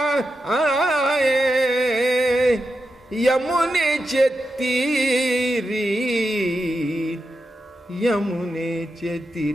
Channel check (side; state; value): both; normal; correlation 0.88